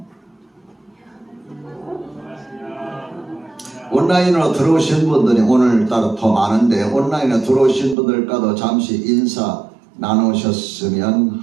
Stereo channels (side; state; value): left; drops out; at 8.0 s